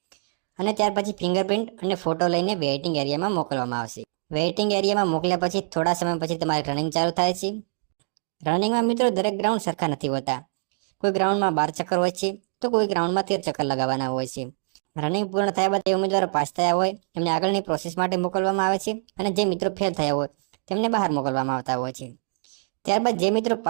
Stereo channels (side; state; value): left; silent; digital silence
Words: અને ત્યાર પછી ફિંગરપ્રિન્ટ અને ફોટો લઈને વેઇટિંગ એરિયામાં મોકલવામાં આવશે. વેઇટિંગ એરિયામાં મોકલ્યા પછી થોડા સમય પછી તમારી રનિંગ ચાલુ થાય છે. રનિંગમાં મિત્રો દરેક ગ્રાઉન્ડ સરખા નથી હોતા. કોઈ ગ્રાઉન્ડમાં 12 ચક્કર હોય છે તો કોઈ ગ્રાઉન્ડમાં 13 ચક્કર લગાવવાના હોય છે. રનિંગ પૂર્ણ થયા બાદ જે ઉમેદવારો પાસ થયા હોય એમને આગળની પ્રોસેસ માટે મોકલવામાં આવે છે અને જે મિત્રો ફેલ થયા હોય તેમને બહાર મોકલવામાં આવતા હોય છે. ત્યારબાદ જે મિત્રો